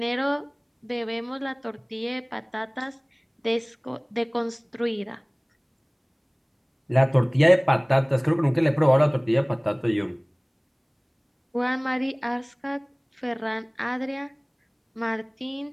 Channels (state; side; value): identical; both; correlation 1.00